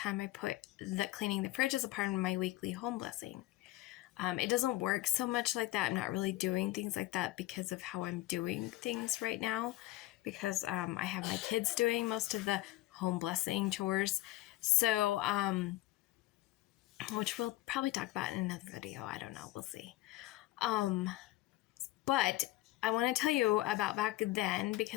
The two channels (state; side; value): quieter; right; 17.0 dB